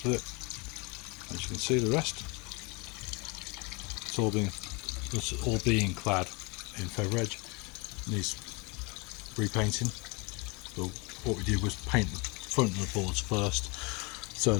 of it. As you can see, the rest, it's all being clad in Fevredge. Needs repainting. So what we did was paint the front of the boards first, so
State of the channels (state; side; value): quieter; right; 28.8 dB